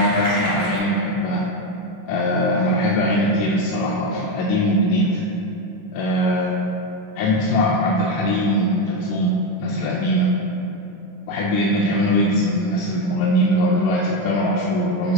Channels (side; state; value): right; late; 11 ms